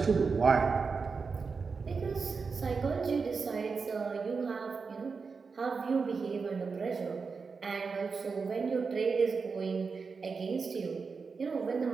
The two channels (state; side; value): quieter; left; 5.0 dB